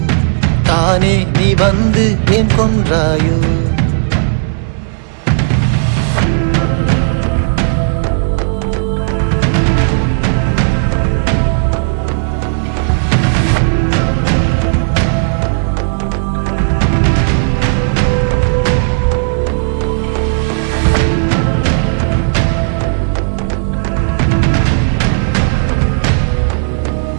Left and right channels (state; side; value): silent; left; digital silence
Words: தானே நீ வந்து ஏன் கொன்றாயோ.